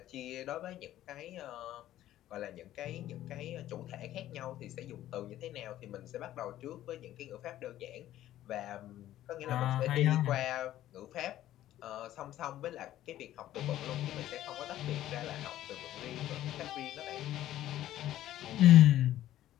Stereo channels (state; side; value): quieter; right; 13.3 dB